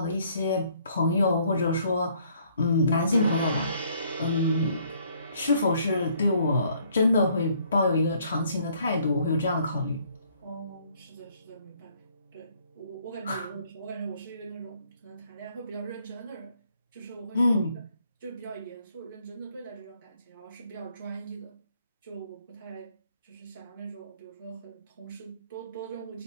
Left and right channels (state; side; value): inverted; both; correlation -0.64